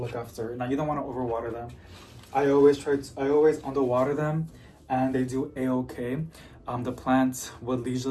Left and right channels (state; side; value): identical; both; correlation 1.00